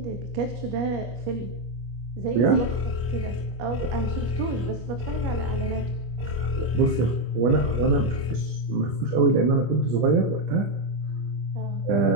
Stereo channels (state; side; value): late; left; 25 ms